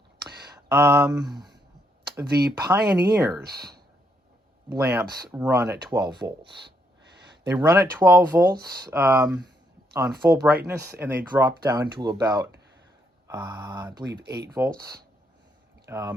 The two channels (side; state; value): both; normal; correlation 0.75